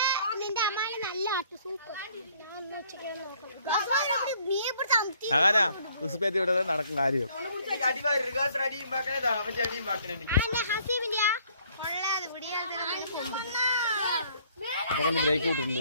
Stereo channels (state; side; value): inverted; both; correlation -0.61